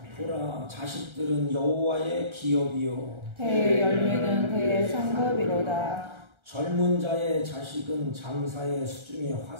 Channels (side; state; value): left; late; 1.3 ms